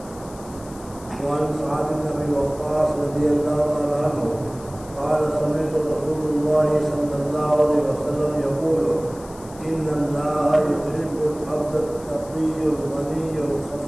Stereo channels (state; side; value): noise; left; hiss, 21 dB below the sound